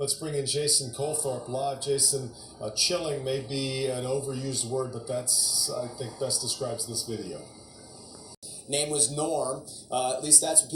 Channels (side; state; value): both; identical; correlation 1.00